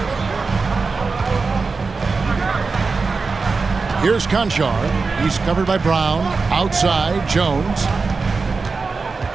Here's Conchar. He's covered by Brown. Outside, Jones.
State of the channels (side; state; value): left; quieter; 4.3 dB